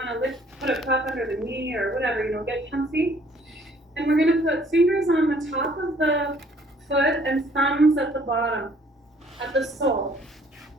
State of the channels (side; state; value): both; normal; correlation 0.60